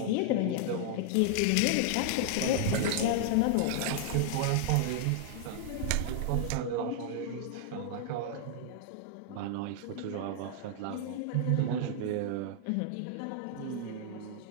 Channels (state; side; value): different; both; correlation 0.00